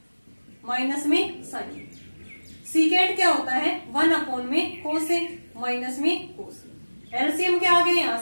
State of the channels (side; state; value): both; inverted; correlation -1.00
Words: माइनस में साइन ए। सीकेंट क्या होता है, 1 में कोस ए माइनस में कोस ए। एलसीएम क्या आ गया यहाँ